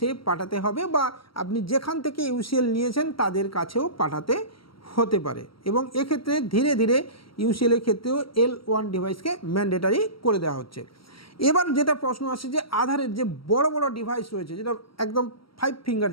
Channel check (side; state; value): right; late; 0.74 ms